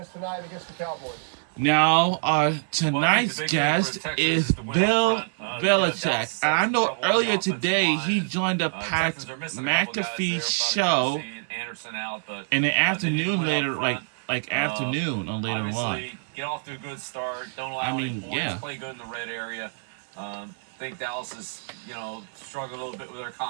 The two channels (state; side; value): silent; left; 58 dB below the other